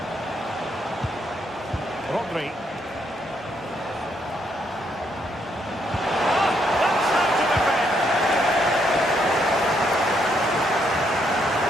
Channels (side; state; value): both; normal; correlation 0.74